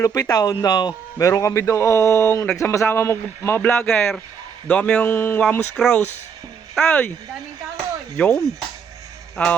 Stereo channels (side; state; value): left; quieter; 6.6 dB